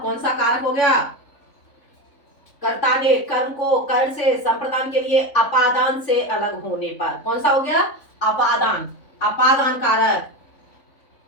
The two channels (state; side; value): late; right; 3.5 ms